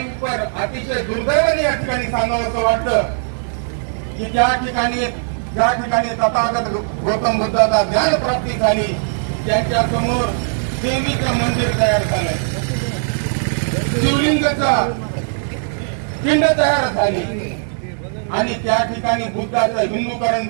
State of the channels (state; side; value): silent; left; 67 dB below the other